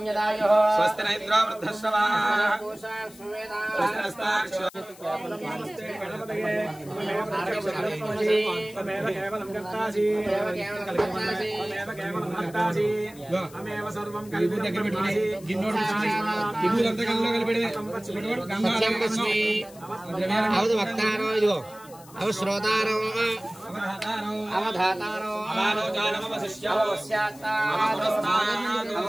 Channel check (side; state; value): left; noise; hiss, 22 dB below the sound